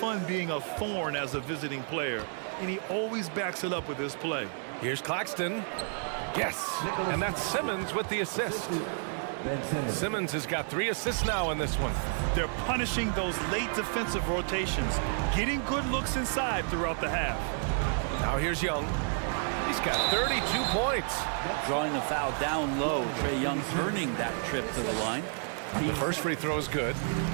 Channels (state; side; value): silent; left; 56 dB below the other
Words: being a thorn as a visiting player, and he always backs it up with his play. Here's Claxton. Yes, and that's Simmons with the assist. Simmons has got 3 assists now in this one. They're punishing those late defensive rotations, getting good looks inside throughout the half. Now here's Young. He's got 32 points. Drawing the foul down low. Trae Young earning that trip to the line. The first free throw is good.